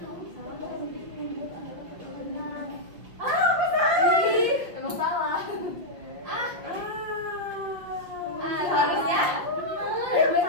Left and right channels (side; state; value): left; late; 5.9 ms